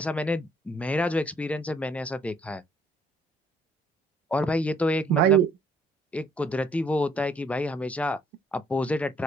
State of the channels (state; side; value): normal; both; correlation 0.63